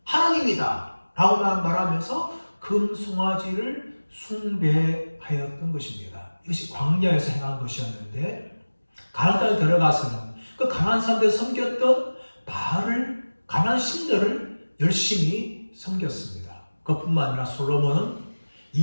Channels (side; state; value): both; inverted; correlation -1.00